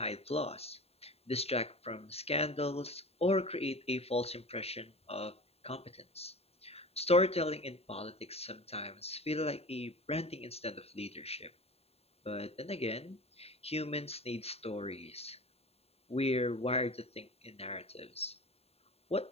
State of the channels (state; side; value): late; right; 0.29 ms